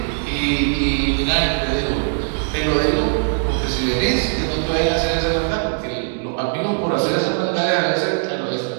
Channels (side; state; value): left; silent; digital silence